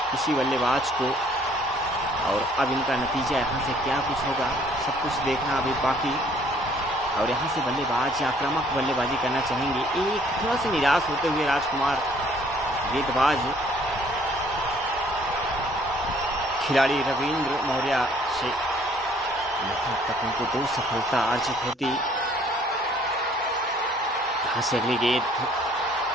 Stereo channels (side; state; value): both; normal; correlation 0.60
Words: किसी बल्लेबाज को और अब इनका नतीजा यहाँ से क्या कुछ होगा सब कुछ देखना अभी बाकी। और यहाँ से बल्लेबाज आक्रामक बल्लेबाजी करना चाहेंगे, एक थोड़ा सा निराश होते हुए राजकुमार गेंदबाज खिलाड़ी रविंद्र मौर्य से तक उनको 2 सफलता अर्जित होती। यहाँ से अगली गेंद,